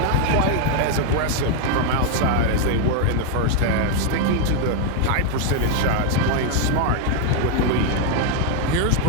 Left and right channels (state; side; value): different; both; correlation 0.01